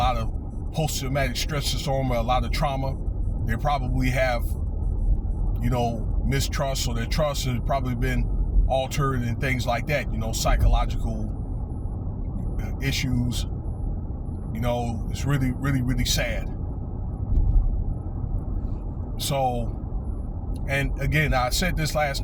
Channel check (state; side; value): identical; both; correlation 1.00